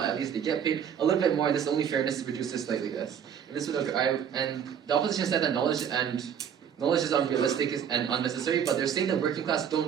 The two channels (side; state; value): left; quieter; 8.4 dB